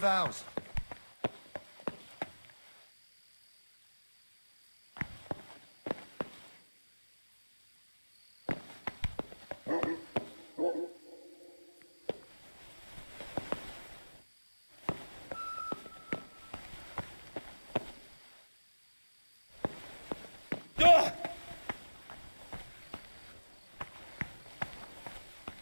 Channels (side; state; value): both; inverted; correlation -1.00